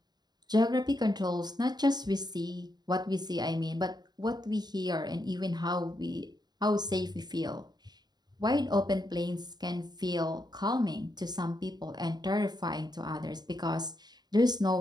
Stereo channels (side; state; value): left; late; 0.20 ms